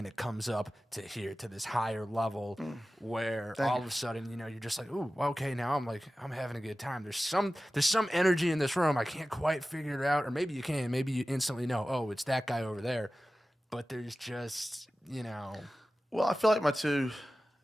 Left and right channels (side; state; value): both; normal; correlation 0.95